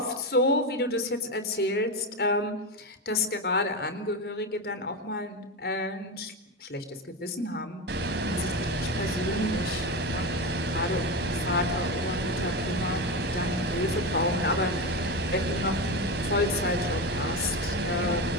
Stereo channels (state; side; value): normal; both; correlation 0.17